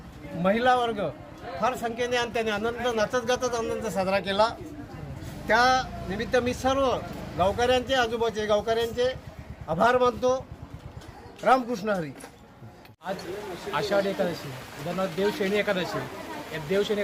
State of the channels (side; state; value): both; identical; correlation 1.00